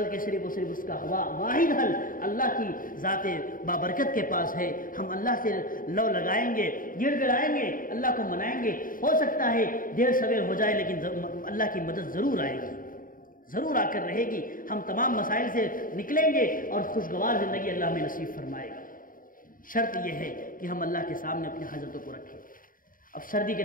صرف اور صرف اس کا واحد حل اللہ کی ذات بابرکت کے پاس ہے۔ ہم اللہ سے لو لگائیں گے، گڑ گڑائیں گے، اللہ کو منائیں گے، ہو سکتا ہے دیر سویر ہو جائے لیکن اللہ کی مدد ضرور آئے گی، ضرور آ کر رہے گی۔ ہم تمام مسائل سے نکلیں گے اور خوشگوار زندگی اللہ ہمیں نصیب فرمائے گا۔ شرط یہ ہے کہ ہم اللہ کے سامنے اپنی حاجتوں کو رکھیں۔ اب سردی کے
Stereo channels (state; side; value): late; right; 0.40 ms